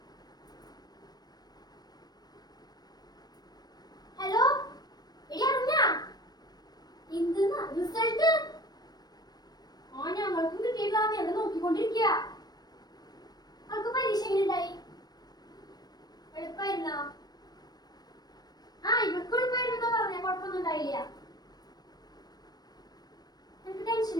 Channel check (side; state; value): right; late; 0.19 ms